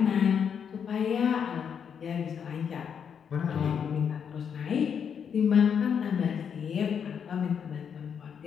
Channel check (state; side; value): quieter; right; 7.4 dB